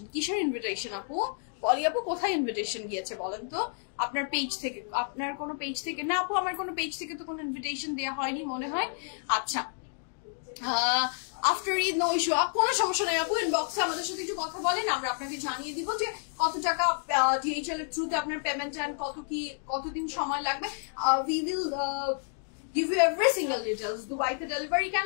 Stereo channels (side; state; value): right; silent; 58 dB below the other